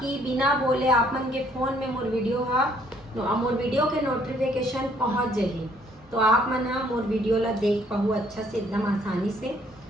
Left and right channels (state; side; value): normal; both; correlation 0.64